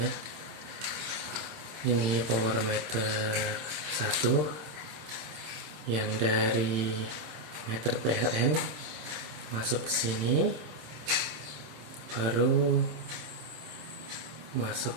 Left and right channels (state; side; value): late; left; 26 ms